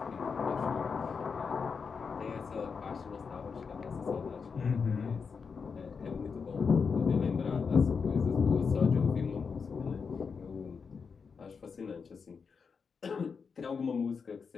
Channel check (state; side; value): quieter; right; 5.6 dB